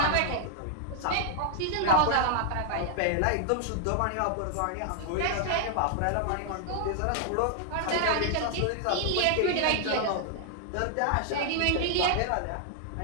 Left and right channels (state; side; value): different; both; correlation 0.00